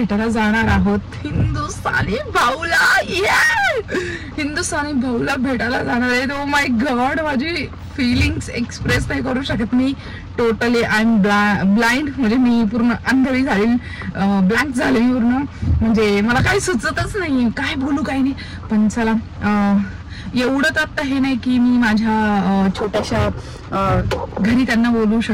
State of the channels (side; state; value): both; identical; correlation 1.00